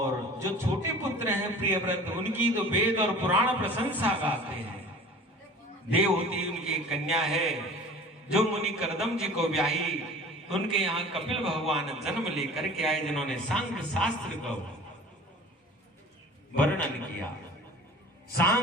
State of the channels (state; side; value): normal; both; correlation 0.43